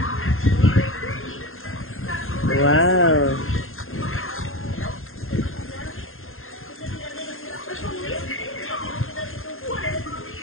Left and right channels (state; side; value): late; right; 0.60 ms